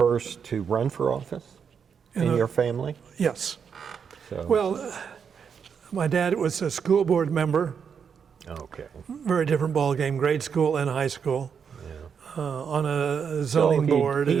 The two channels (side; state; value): left; quieter; 6.8 dB